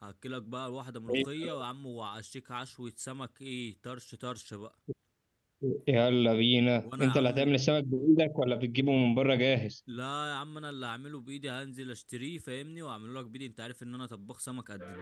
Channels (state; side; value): identical; both; correlation 1.00